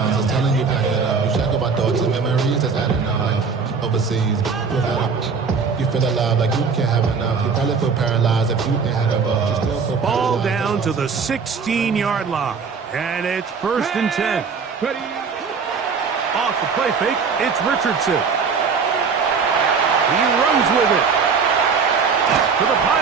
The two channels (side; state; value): left; quieter; 5.5 dB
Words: It's telling you back it up. You check about thoughts and memories that's adding up. Like overseas. You feel alive like you can't have enough. You probably feel paralyzed if you ain't had a buzz. You still feel ball down to the 16-yard line. And it's first and 10. Off the play fake, it's Richardson. He runs with it. To the